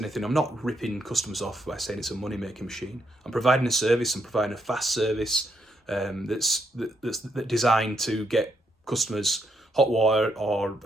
I'm not ripping customers off by saying it's a money-making machine. I'm providing a service. I'm providing a fast service that's designed to get customers hot water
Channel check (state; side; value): normal; both; correlation 0.77